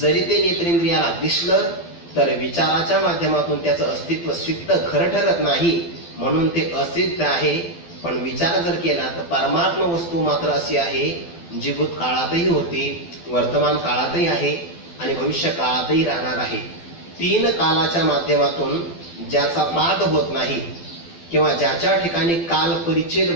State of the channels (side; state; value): right; late; 12 ms